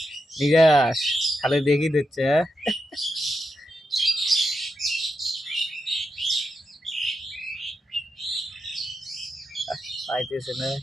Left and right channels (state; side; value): normal; both; correlation 0.86